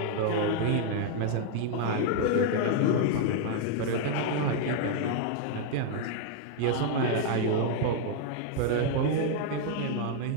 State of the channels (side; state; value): both; different; correlation 0.00